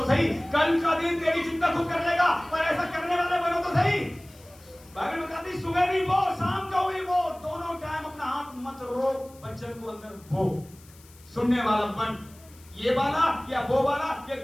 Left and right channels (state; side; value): noise; left; hiss, 25 dB below the sound